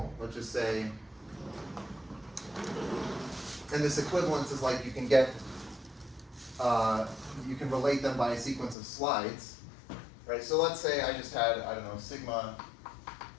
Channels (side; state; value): right; drops out; at 8.8 s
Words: Let's just say, and this equivalence is like you can get, you can relate them by a sequence of slides, right? So let's say I just had, I don't know, sigma